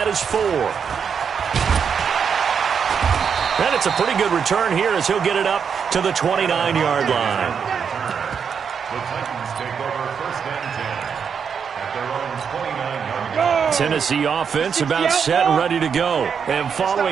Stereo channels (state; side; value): quieter; left; 6.8 dB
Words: his 4. And it's a pretty good return here as he'll get it up to the 29-yard line. The Titans take over 1st and 10 at their own 29-yard line. Tennessee offense about set and ready to go. And